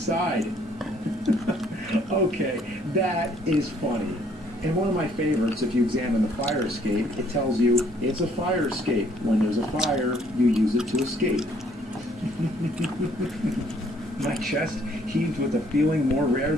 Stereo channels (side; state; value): both; normal; correlation 0.64